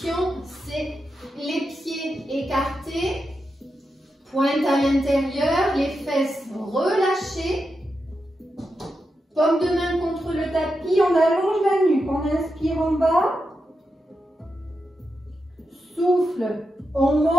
c'est les pieds écartés, pointe à l'intérieur, les fesses relâchées, paume de main contre le tapis, on allonge la nuque, on inspire en bas, souffle, on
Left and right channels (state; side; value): normal; both; correlation 0.88